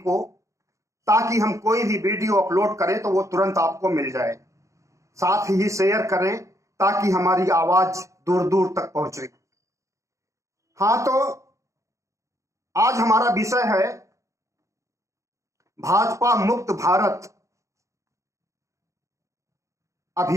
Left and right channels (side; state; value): left; late; 0.15 ms